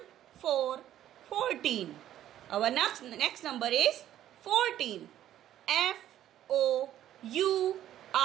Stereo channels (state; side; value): quieter; left; 12.0 dB